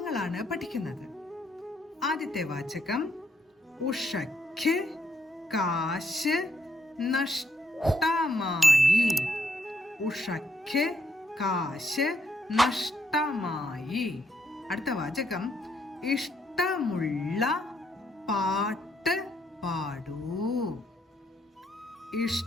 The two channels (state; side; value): normal; both; correlation 0.74